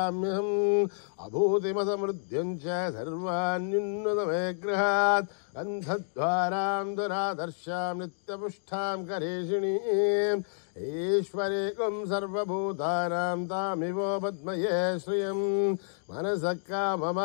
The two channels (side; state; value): right; silent; digital silence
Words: अभूतिमसमृद्ध्यं च सर्वान्युन्नतमे गृहात् गन्धद्वारां दुरादर्शां नित्यपुष्टां करेषिणीम् ईश्वरीकं सर्वभूतानां तामिवो पद्मये श्रियं मनसः